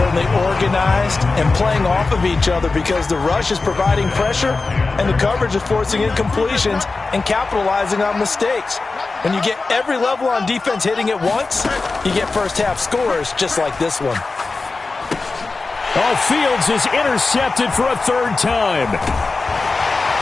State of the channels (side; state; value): right; quieter; 3.8 dB